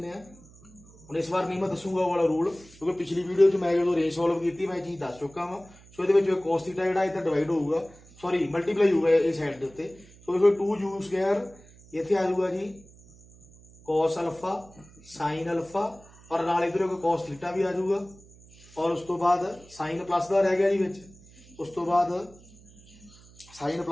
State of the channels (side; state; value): right; noise; hum, 24 dB below the sound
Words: आ। हुण इस बार नहीं मैं दसूंगा वो वाला रूल, क्योंकि पिछली वीडियो मैं जो रेंज सॉल्व की मैं चीज़ दस चुका वा। सो ये cos थीटा जो इधर डिवाइड होगा, सॉरी मल्टीप्लाई होगा इस साइड के उत्ते। सो देखो 2 u स्क्वायर इत्थे आ जाऊगा जी cos अल्फा sin अल्फा और नाल इधर cos थीटा भी आ जाऊगा। और उस तो बाद साइन प्लस का रह गया जी विच। उस तो बाद साइन